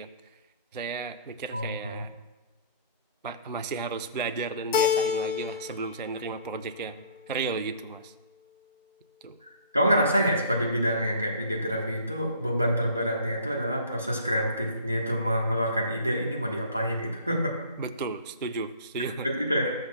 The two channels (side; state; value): both; inverted; correlation -0.53